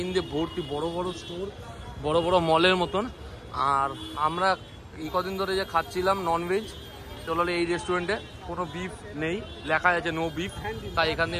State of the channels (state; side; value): identical; both; correlation 1.00